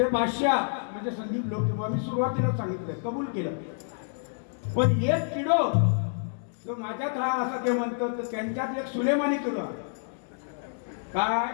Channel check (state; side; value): silent; right; 59 dB below the other